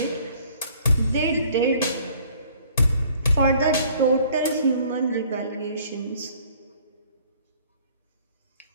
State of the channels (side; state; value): both; inverted; correlation -0.57